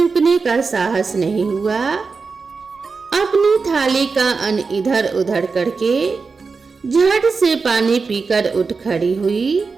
का साहस नहीं हुआ। अपनी थाली का अन्न इधर उधर करके झट से पानी पीकर उठ खड़ी हुई।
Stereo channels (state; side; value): quieter; left; 4.7 dB